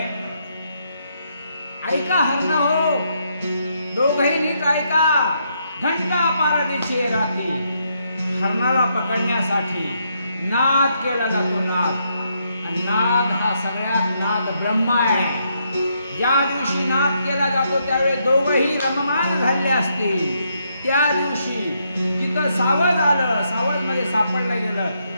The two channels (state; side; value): inverted; both; correlation -0.76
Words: ऐका हरण हो, दोघही नीट ऐका. घंटा पारदीची रात्री हरणाला पकडण्यासाठी नाद केला जातो. नाद, आणि नाद हा सगळ्यात नाद ब्रह्म आहे. ज्या दिवशी नाद केला जातो त्यावेळी दोघही रममाण झाले असतील. त्या दिवशी जिथं सावध आलं, सावध मध्ये सापडलं गेलं,